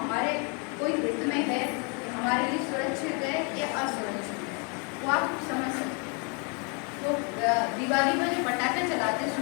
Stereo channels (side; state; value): right; quieter; 35.0 dB